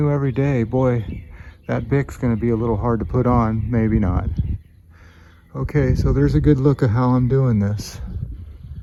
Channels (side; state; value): both; identical; correlation 1.00